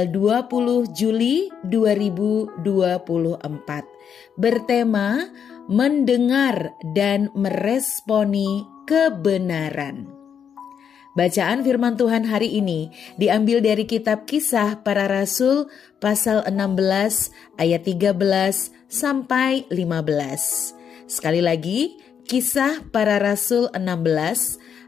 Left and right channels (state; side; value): quieter; right; 7.7 dB